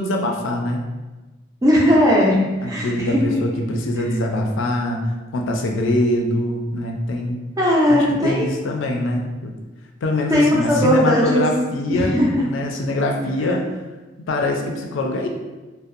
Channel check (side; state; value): both; normal; correlation 0.58